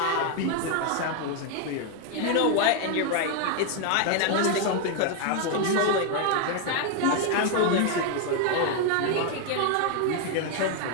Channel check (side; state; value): both; different; correlation 0.01